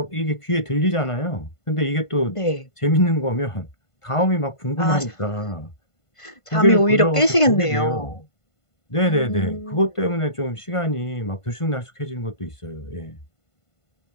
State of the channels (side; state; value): right; late; 1.5 ms